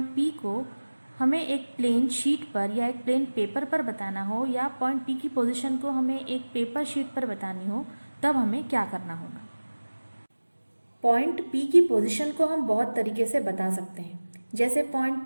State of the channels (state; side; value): inverted; both; correlation -1.00